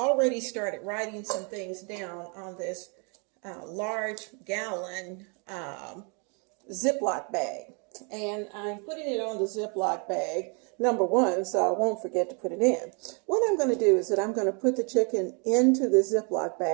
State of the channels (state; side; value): quieter; left; 35.7 dB